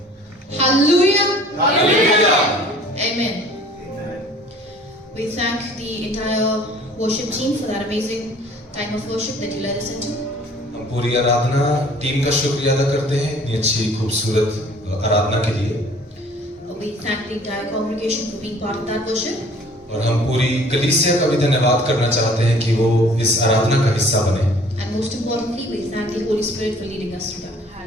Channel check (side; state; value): both; normal; correlation 0.52